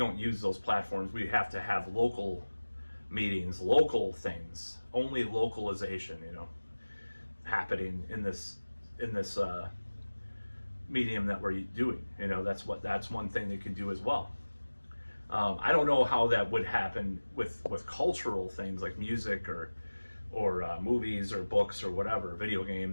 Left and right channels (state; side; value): inverted; both; correlation -1.00